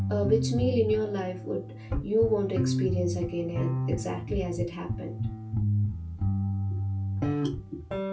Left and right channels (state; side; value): identical; both; correlation 1.00